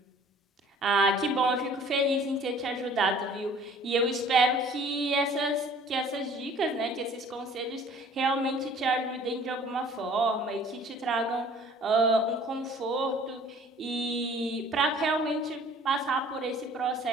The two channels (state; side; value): normal; both; correlation 0.52